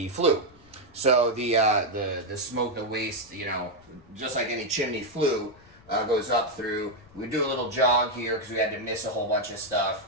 flue. So the smoke, the waste, you know, just like any chimney flue, goes up through. We do a little jog here because we had to miss a whole bunch of stuff.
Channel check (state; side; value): noise; left; rumble, 27 dB below the sound